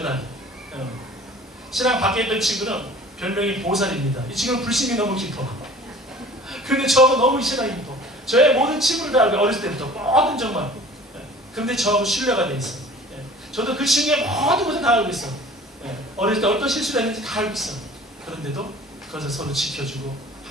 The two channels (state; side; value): normal; both; correlation 0.46